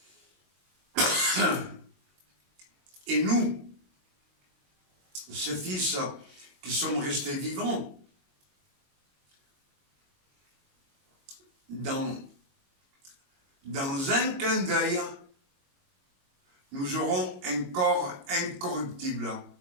et nous, ces fils qui sommes restés vivants, dans un clin d'œil, nous aurons un corps incorruptible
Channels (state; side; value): late; left; 22 ms